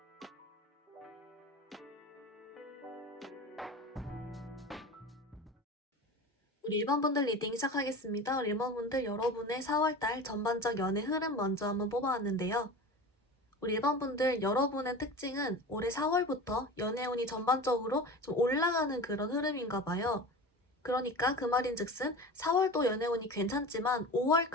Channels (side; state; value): both; normal; correlation 0.32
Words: 우리 1번분들 리딩 시작하겠습니다. 우리 1번분들 여러분의 4월달 전반적 연애 흐름 먼저 한번 뽑아왔는데요. 우리 1번분들 여러분의 특징은 올해 4월부터 연애운이 전반적으로 좀 올라가는 그런 흐름인가 봐요. 그러니까 그 말인즉슨 4월도 연애운이 괜찮지만